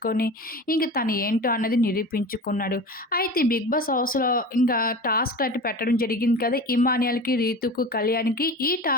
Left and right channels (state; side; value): normal; both; correlation 0.33